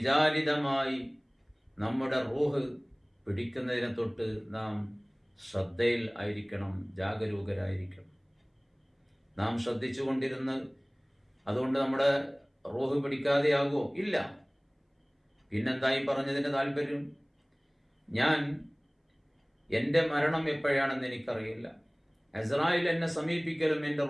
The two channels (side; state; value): both; identical; correlation 1.00